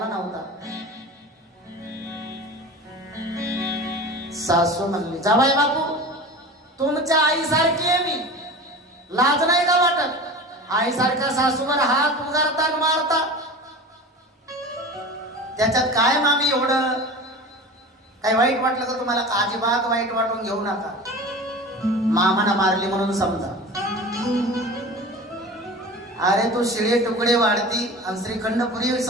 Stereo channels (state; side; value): normal; both; correlation 0.34